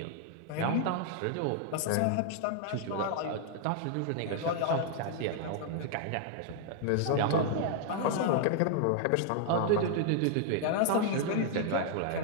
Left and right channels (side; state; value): both; different; correlation -0.01